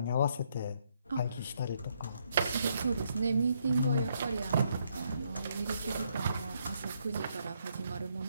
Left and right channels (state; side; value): inverted; both; correlation -0.73